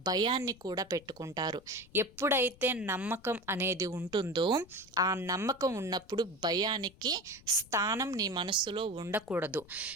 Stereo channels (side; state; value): left; noise; rumble, 24 dB below the sound